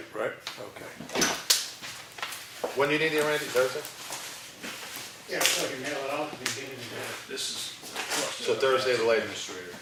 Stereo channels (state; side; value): identical; both; correlation 1.00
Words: right? Okay. When do you need it, Randy, Thursday? Yeah, so you mail it out, and you get it in there. This is. So Thursday the latest. Administrator,